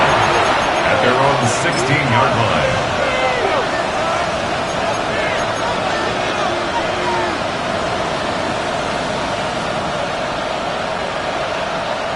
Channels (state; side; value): identical; both; correlation 1.00